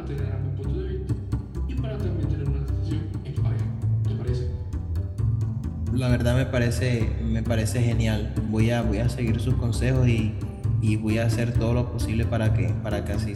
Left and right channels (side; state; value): both; identical; correlation 1.00